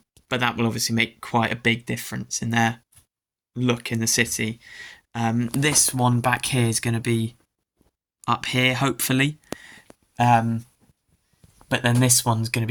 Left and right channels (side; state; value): both; identical; correlation 1.00